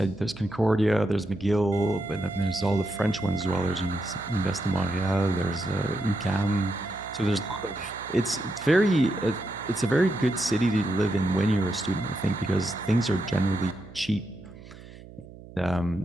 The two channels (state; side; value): noise; right; hum, 18 dB below the sound